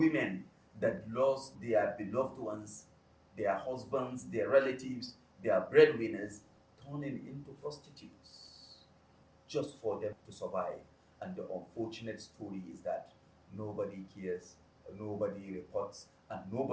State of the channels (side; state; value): both; identical; correlation 1.00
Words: that lost their beloved ones, their husbands, their relatives, their breadwinners, turning into prostitutes just for them to survive. And the unfortunate story is that nobody cares, nobody reports, and